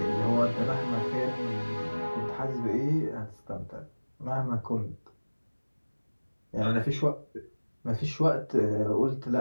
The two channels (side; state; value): both; inverted; correlation -1.00